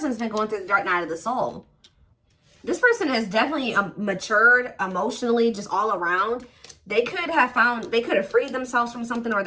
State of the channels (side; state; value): both; identical; correlation 1.00